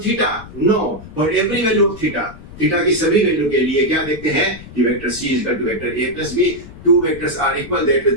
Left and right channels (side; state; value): left; noise; rumble, 16 dB below the sound